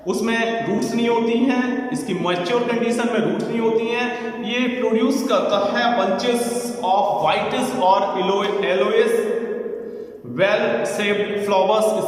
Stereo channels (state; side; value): identical; both; correlation 1.00